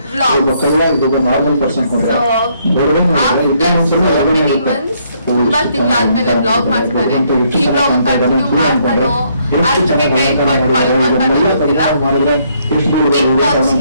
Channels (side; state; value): both; inverted; correlation -0.70